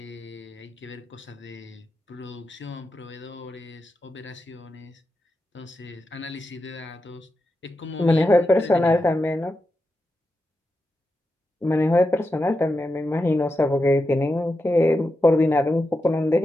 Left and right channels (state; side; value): normal; both; correlation 0.88